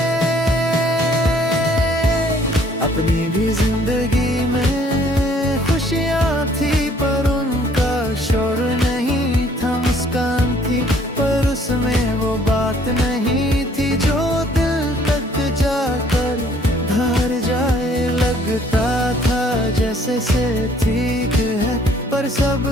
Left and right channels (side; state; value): both; normal; correlation 0.60